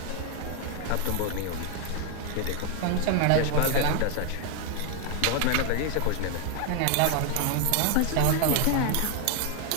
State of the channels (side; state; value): both; different; correlation 0.01